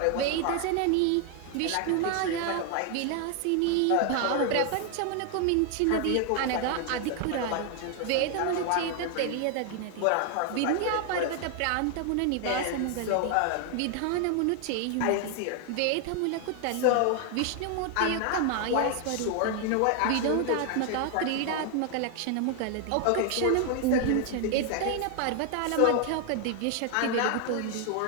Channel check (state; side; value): different; both; correlation 0.00